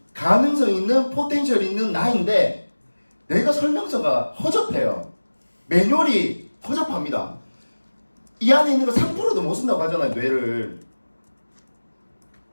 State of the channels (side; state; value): both; inverted; correlation -1.00